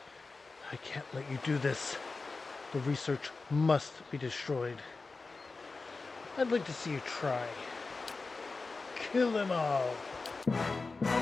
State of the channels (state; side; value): quieter; right; 3.9 dB